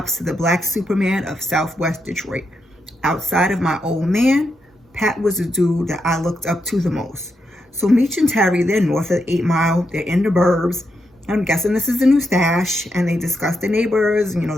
to the Black Superman of Southwest Detroit. Outside of my old man, Pat was the dude that I looked up to the most. So Meech and Terry, they're north of 8 Mile. They're in the burbs. I'm guessing this is the new stash. And they discuss the neighbors,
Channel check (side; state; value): both; normal; correlation 0.83